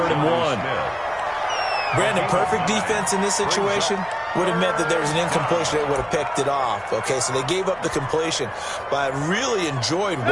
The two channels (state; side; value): identical; both; correlation 1.00